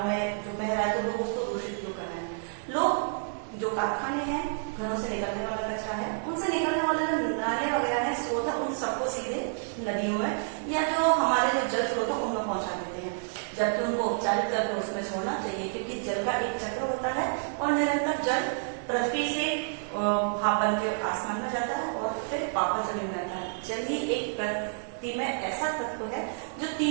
में जो बह रहा है तो लोग उसको दूषित क्यों कर रहे हैं? लोग जो कारखाने हैं, घरों से निकलने वाला कचरा है, उनसे निकलने वाले जो नाले वगैरह है, स्रोत है, उन सबको सीधे नदियों में या जो हमारे जो जल स्रोत है उनमें पहुंचा देते हैं, जबकि उनको उपचारित करके उसमें छोड़ना चाहिए, क्योंकि जल का एक चक्र होता है और निरंतर जल पृथ्वी से भाप बन के आसमान में जाता है और फिर वापस जमीन में आता है। जल ही एक प्रकृति में ऐसा तत्व है जो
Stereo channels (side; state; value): left; silent; 58 dB below the other